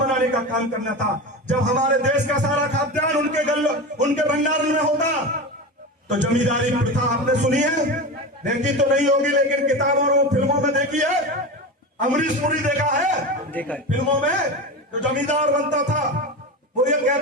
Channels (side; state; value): both; normal; correlation 0.24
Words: का काम करना था। जब हमारे देश का सारा खाद्यान्न उनके भंडारण में होता, तो जमींदारी प्रथा आपने सुनी है, देखी तो नहीं होगी, लेकिन किताबों और फिल्मों में देखी है। अमरीश पुरी देखा है फिल्मों में, जो जमींदार बनता था वो ये